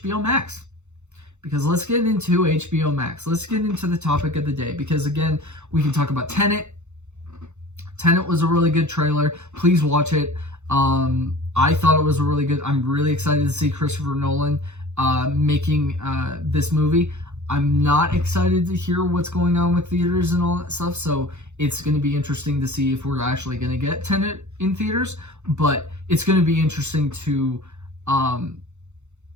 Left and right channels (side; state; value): left; late; 0.83 ms